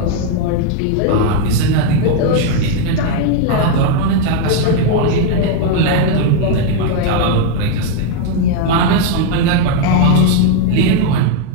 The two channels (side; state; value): both; different; correlation 0.00